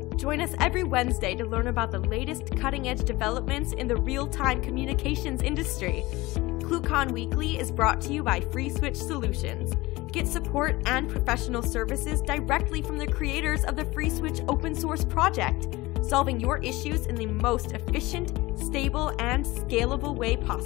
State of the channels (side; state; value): right; quieter; 20.4 dB